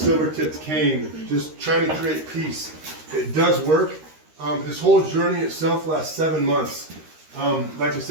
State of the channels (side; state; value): left; late; 13 ms